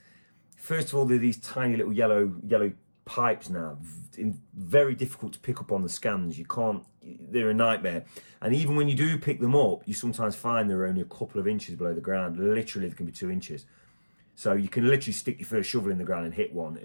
first of all, they're these tiny little yellow pipes now, very difficult to pick up on the scans. They're a nightmare. And even when you do pick them up, you sometimes find they're only a couple of inches below the ground. Literally, they can be 2 inches. So you can literally stick your first shovel in the ground and hit one.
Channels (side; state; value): both; inverted; correlation -1.00